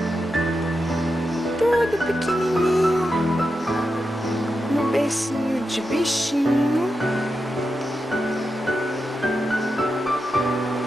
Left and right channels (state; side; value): normal; both; correlation 0.88